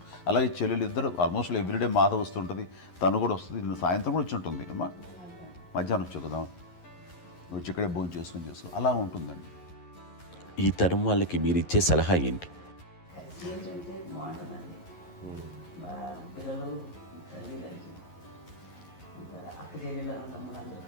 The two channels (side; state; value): right; late; 11 ms